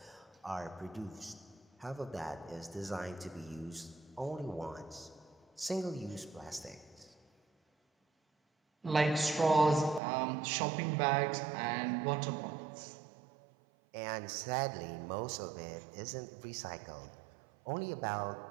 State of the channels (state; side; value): drops out; left; at 10.0 s